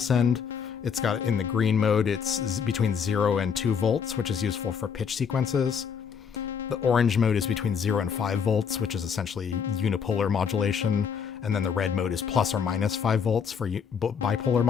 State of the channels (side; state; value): right; quieter; 6.8 dB